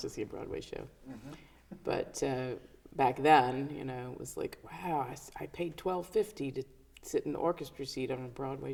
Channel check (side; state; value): both; identical; correlation 1.00